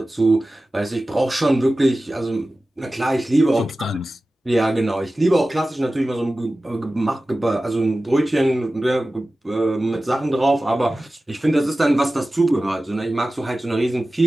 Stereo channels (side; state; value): both; normal; correlation 0.96